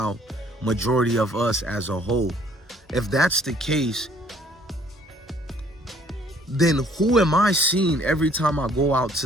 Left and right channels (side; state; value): both; normal; correlation 0.60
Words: majority of us as a whole. If that's the case, then who am I seeing every time I go out